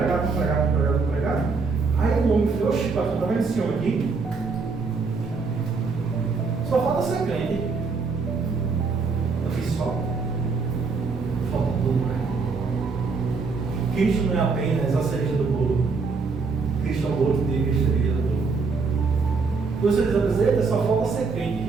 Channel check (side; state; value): left; quieter; 4.6 dB